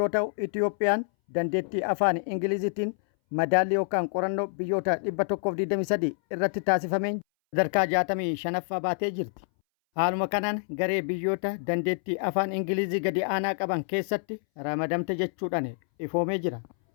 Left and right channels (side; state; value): right; silent; 59 dB below the other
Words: ta'u Itoophiyaan dandeettii afaan Ingiliziitiin madaallii yookaan qorannoo biyyoota 123 irratti taasifameen sadarkaa 65ffaa baatee jirti. Haaluma kanaan garee biyyoota dandeettii afaan Ingilizii gadi aanaa qaban keessatti ramadamte jechuudhaan ifoomee jira.